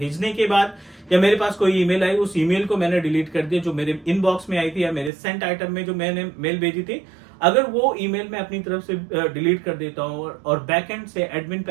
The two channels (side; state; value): left; drops out; at 5.1 s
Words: के बाद या मेरे पास कोई ईमेल आई, उस ईमेल को मैंने डिलीट कर दिया जो मेरे इनबॉक्स में आई थी या मेरे सेंट आइटम में जो मैंने मेल भेजी थी, अगर वो ईमेल मैं अपनी तरफ से डिलीट कर देता हूं और बैकएंड से एडमिन